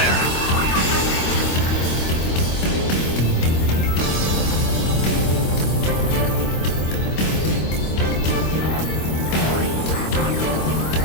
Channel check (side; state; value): right; late; 25 ms